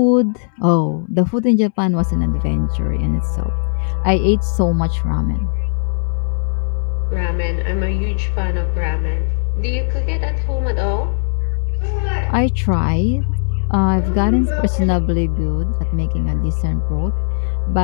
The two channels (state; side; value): silent; right; 67 dB below the other